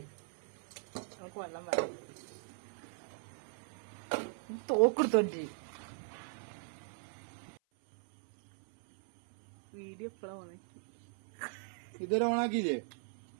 നമുക്ക് വെള്ളം വേണം. തോക്കെടുത്തോണ്ടി വീഡിയോ എപ്പോഴാ ഉണക്കി ഇതൊരു ഓണാക്കിയില്ലേ?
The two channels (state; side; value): silent; left; 52 dB below the other